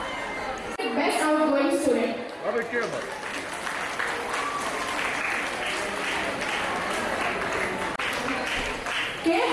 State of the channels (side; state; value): both; identical; correlation 1.00